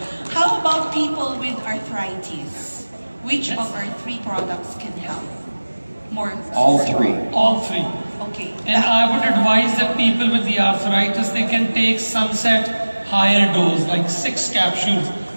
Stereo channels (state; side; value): inverted; both; correlation -1.00